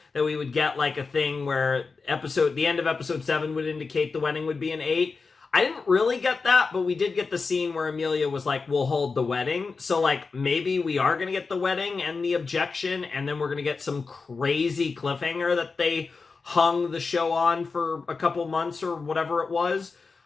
that we would get like a thing where the end of episode 7 would indicate the wedding would be in 8. I didn't really get that, but we did get the scene where Amelia was like, we'll hold the wedding. So, like, maybe we are going to get the wedding and the objection, and then we're going to get some crazy cliffhanger that they hung the show on for a couple months or whatever it was.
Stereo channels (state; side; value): quieter; right; 4.5 dB